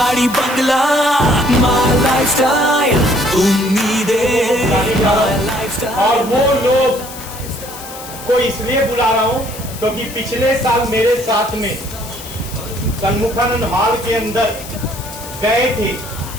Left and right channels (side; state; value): left; noise; hiss, 14 dB below the sound